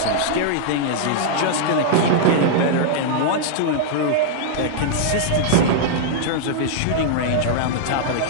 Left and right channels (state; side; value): different; both; correlation -0.01